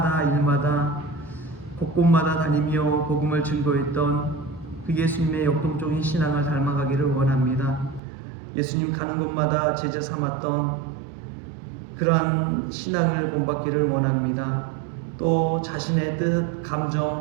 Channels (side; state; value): left; drops out; at 8.0 s